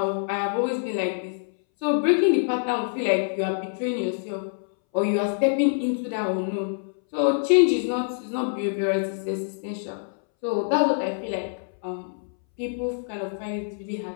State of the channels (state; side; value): silent; right; 61 dB below the other